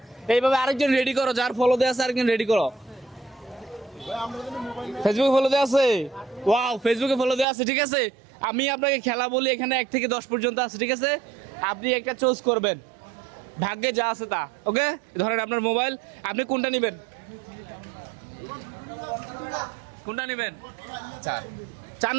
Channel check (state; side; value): drops out; left; at 7.5 s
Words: এইভাবে আরেকজন রেডি করো, যার ফলো দেওয়া আছে আরেকজন রেডি করো। ফেসবুকে ফলো দেওয়া আছে? ওয়াও, ফেসবুকে ফলো দেওয়া আছে। ঠিক আছে, আমি আপনাকে খেলা বলি, এখানে 1 থেকে 10 পর্যন্ত আছে। ঠিক আছে, আপনি একটা চুজ করবেন, ভাগ্যে যা আছে তা। ওকে, ধরেন আপনার মোবাইল, আপনি কোনটা নেবেন? কোনটা নেবেন? 4